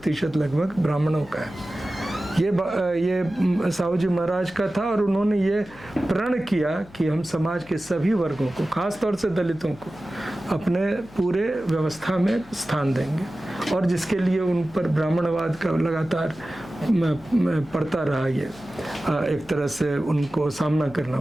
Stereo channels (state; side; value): noise; left; hum, 23 dB below the sound